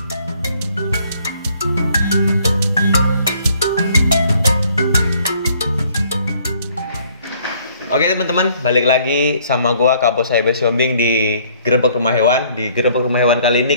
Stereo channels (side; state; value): both; inverted; correlation -0.62